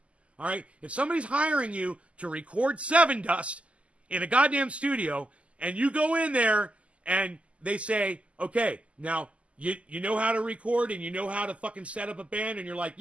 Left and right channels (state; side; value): late; left; 0.061 ms